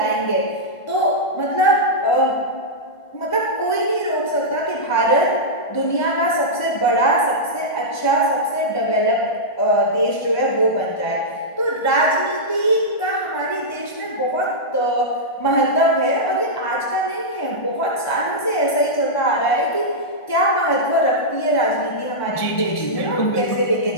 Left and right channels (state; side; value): late; right; 1.5 ms